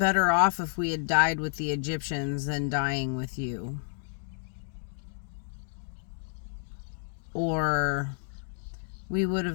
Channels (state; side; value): silent; right; digital silence